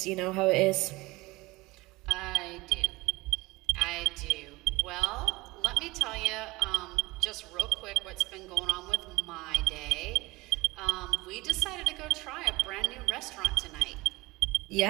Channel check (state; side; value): quieter; left; 21.3 dB